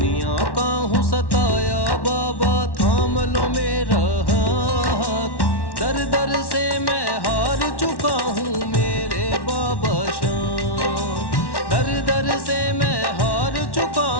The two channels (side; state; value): right; late; 1.1 ms